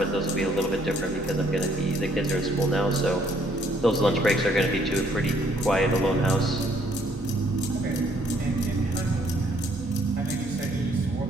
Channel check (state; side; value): normal; both; correlation 0.66